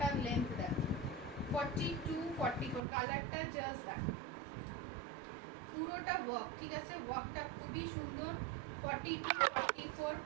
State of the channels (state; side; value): drops out; left; at 2.8 s